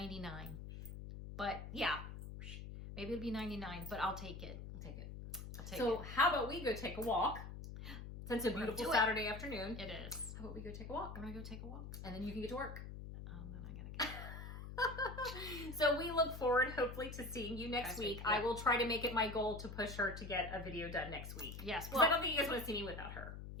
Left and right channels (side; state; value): left; noise; hum, 9 dB below the sound